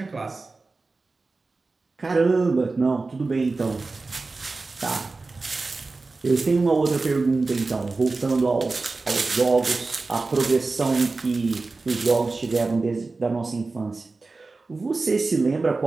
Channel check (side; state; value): left; quieter; 3.7 dB